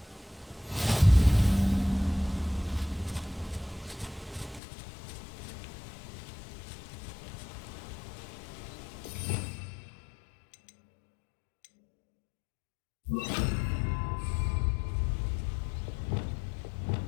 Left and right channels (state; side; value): drops out; right; at 4.6 s